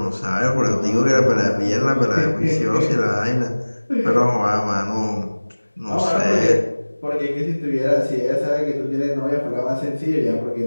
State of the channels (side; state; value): both; inverted; correlation -1.00